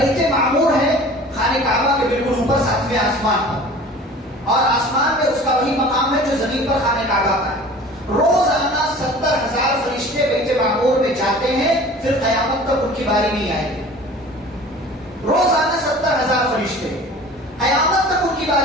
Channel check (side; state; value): both; normal; correlation 0.43